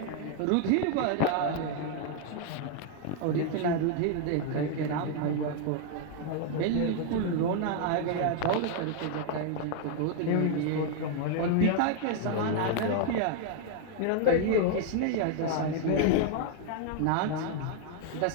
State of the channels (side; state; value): both; different; correlation 0.00